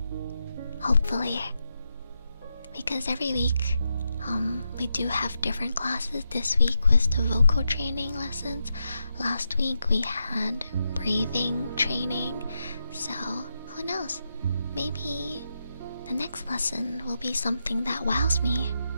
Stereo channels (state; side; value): inverted; both; correlation -0.85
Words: Hopefully. Because every week we do have different classes. This week was the vocal training lessons. Last week we had breathing training. So who knows? Maybe the next lesson will be something that wows me.